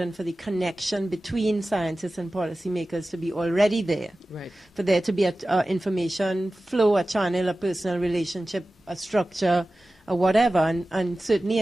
for the connection between scientists and policymakers to be already there. Right. For there to be an information flow, a channel, a personal relationship, a structure, or whatever. And certainly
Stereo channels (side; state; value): both; normal; correlation 0.96